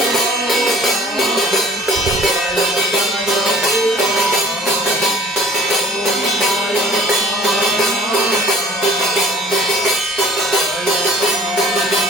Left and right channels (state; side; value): normal; both; correlation 0.51